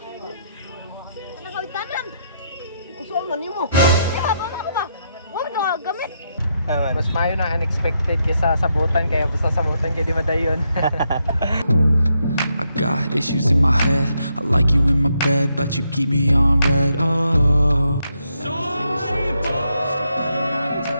Ano ka itanan? Saan man mo? Diba, bala ko ba? Huwag na gamit. Mas mayo na unexpected kaysa sabutan, kaya basta sabutan kaya di madayon. I got issues in my head. I like you in my bed, but you keep me on red. Oh,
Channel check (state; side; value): inverted; both; correlation -0.79